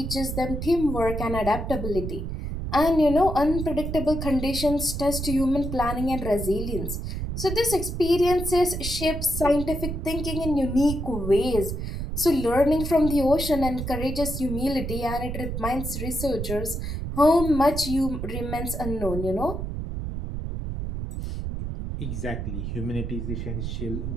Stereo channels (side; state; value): right; noise; rumble, 4 dB below the sound